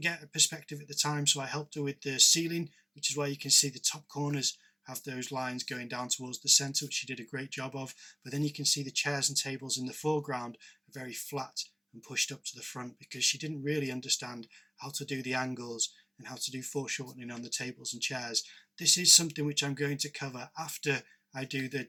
get a perspective at the time, so I helped her with the ceiling, which is why you can see the top corners have those lines going down towards the center, which she did a great job of. But then you can see the chairs and tables in the foreground are very flat and pushed up to the front because she didn't really understand how to do the angles and how to do foreshortening on the tables and chairs. This is something which I'm going to cover after I do the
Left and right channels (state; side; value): identical; both; correlation 1.00